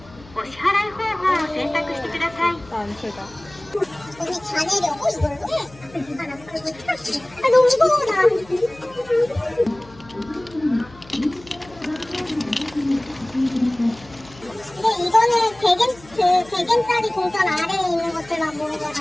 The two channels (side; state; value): left; noise; hum, 23 dB below the sound